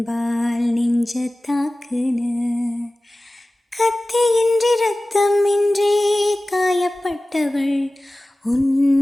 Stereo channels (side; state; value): both; normal; correlation 0.97